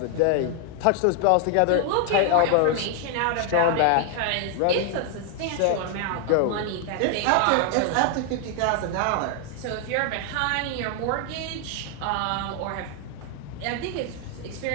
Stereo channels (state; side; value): different; both; correlation 0.00